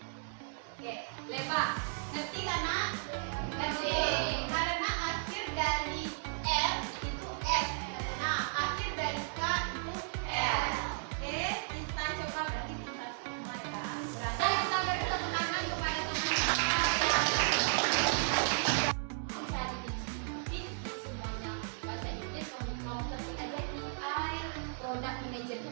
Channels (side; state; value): left; silent; digital silence